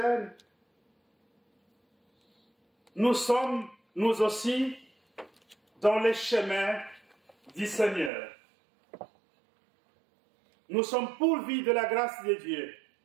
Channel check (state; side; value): drops out; left; at 8.1 s